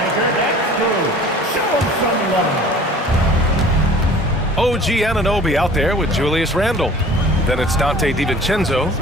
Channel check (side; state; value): both; normal; correlation 0.47